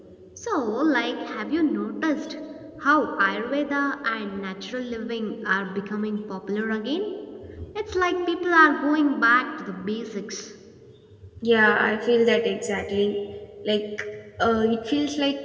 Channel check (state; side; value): identical; both; correlation 1.00